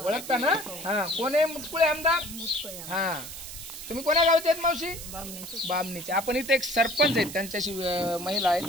ओळखता ना? हा, कोण आहे मुटकुळे आमदार? हा, तुम्ही कोण्या गावचे आहेत मावशी? बामणीचे. आपण इथे एक सरपंच आहेत, त्यांच्याशी महिला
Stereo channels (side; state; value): right; noise; hiss, 11 dB below the sound